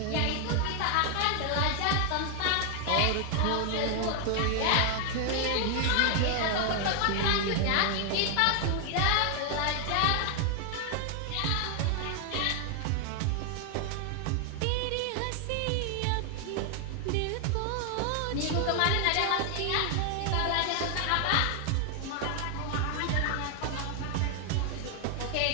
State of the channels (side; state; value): both; different; correlation 0.00